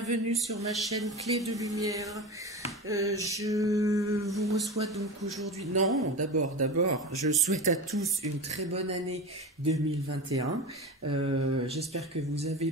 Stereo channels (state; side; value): normal; both; correlation 0.27